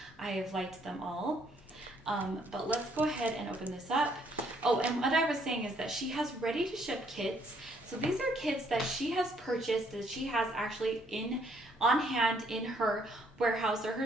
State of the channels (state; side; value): normal; both; correlation 0.67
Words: I have liked them all. But let's go ahead and open this up. Oh, and what I was saying is that she has ready to ship kits. So these are kits that she has purchased, that she has actually on hand in her warehouse or